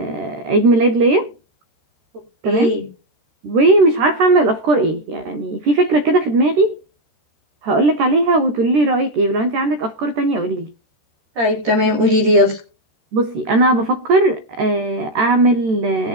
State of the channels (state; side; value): late; left; 13 ms